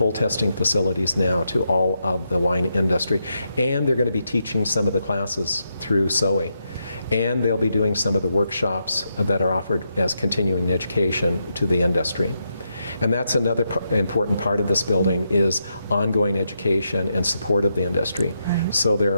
testing facilities now to all of the wine industry. And they're going to be teaching some of the classes through Soe. And they'll be doing some of the workshops that are offered as continuing education to the industry. And that's another important part of this building, is ongoing education and support of the industry. So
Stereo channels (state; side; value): inverted; both; correlation -0.82